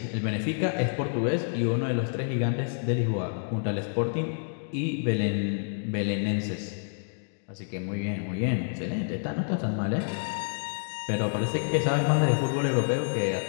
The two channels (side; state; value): right; silent; digital silence